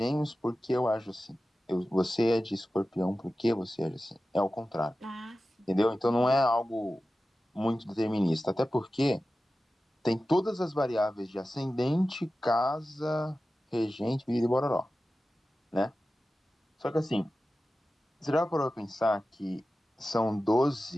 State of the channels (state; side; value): normal; both; correlation 0.94